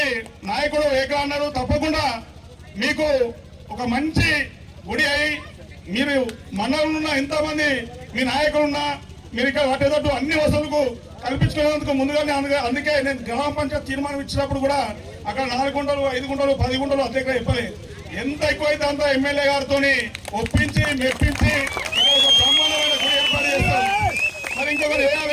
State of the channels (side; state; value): both; identical; correlation 1.00